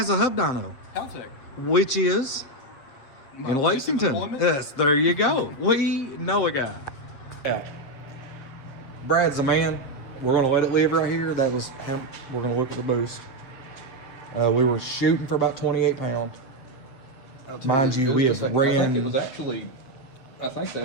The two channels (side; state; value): right; late; 7.6 ms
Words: a hub dyno? Haltech. Which is in Lexington. Employment? Yes, there you go. We know a guy. Yeah. Brad's the man. We're gonna let it live right here. That was him. We're gonna look at the boost. We were shooting for about 28 pounds. Mind you, we have I think ran. it was actually, I think